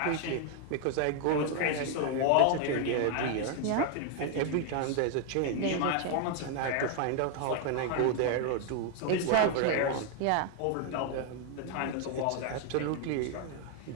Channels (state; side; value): different; both; correlation 0.00